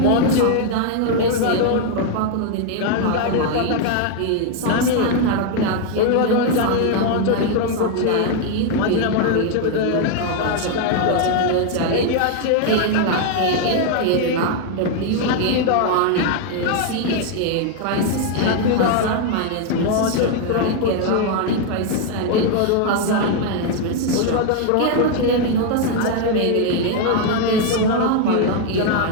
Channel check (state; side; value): different; both; correlation 0.00